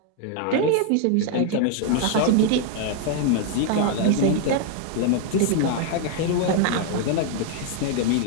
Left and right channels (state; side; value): different; both; correlation 0.00